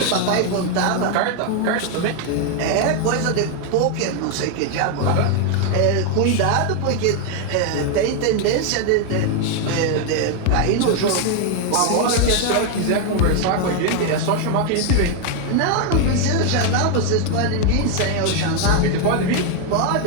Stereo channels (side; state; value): both; different; correlation 0.01